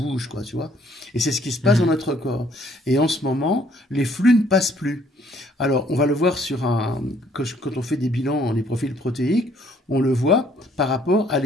quoi, tu vois. Et c'est ce qui se passe dans notre corps. Et en ce moment les flux ne passent plus. Alors on va le voir quand on fait des bilans, les profils protéiques, on le voit par rapport à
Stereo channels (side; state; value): both; normal; correlation 0.63